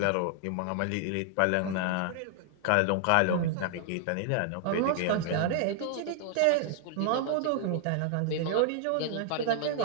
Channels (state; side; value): different; both; correlation 0.00